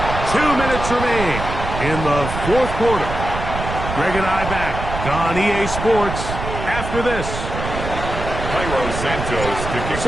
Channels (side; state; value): right; noise; rumble, 6 dB below the sound